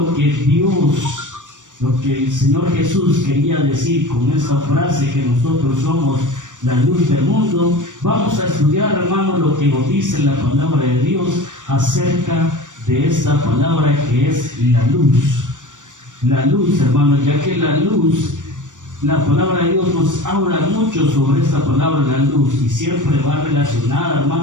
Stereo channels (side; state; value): left; late; 0.87 ms